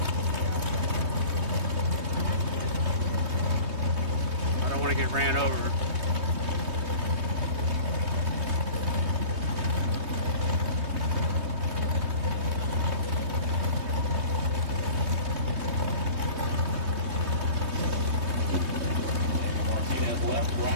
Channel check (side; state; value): left; late; 3.2 ms